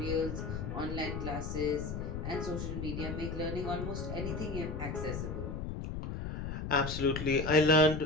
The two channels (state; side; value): noise; left; rumble, 4 dB below the sound